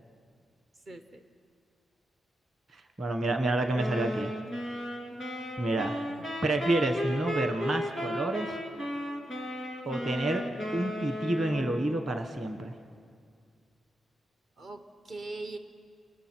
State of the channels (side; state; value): both; normal; correlation 0.86